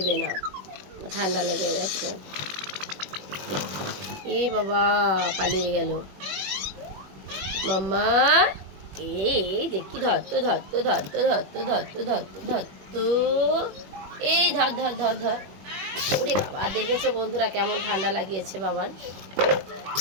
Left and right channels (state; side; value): late; left; 21 ms